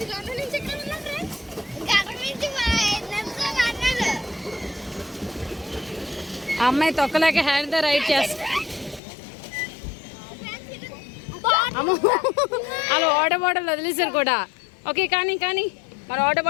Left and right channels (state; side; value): drops out; right; at 9.0 s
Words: అమ్మాయి తొక్కలేక హ్యాండ్తో రైడ్ చేస్తా. అమ్మ అలా వాటర్ బాటిల్ వదిలేసారు కూడా. ఓకే కానీ మరి వాటర్